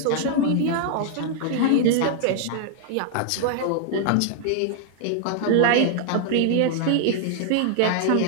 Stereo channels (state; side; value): different; both; correlation 0.00